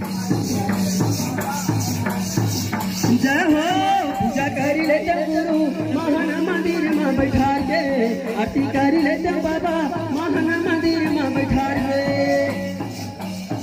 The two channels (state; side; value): identical; both; correlation 1.00